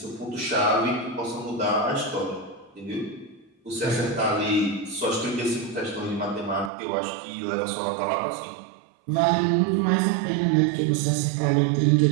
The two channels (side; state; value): left; drops out; at 6.7 s